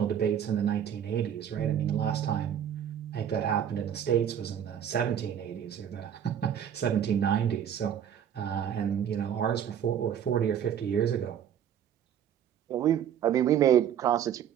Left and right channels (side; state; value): left; quieter; 9.3 dB